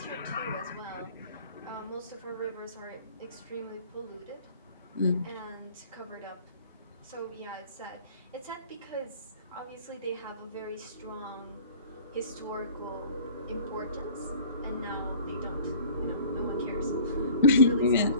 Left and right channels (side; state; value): both; inverted; correlation -0.47